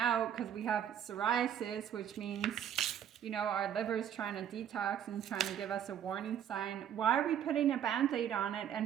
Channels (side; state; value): left; quieter; 9.5 dB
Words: because we have psoriasis, which means, our liver's trying to detox and trying to give us a warning sign, why are we putting a Band-Aid on it